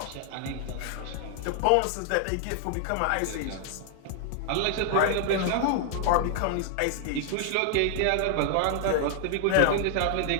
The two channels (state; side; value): different; both; correlation 0.00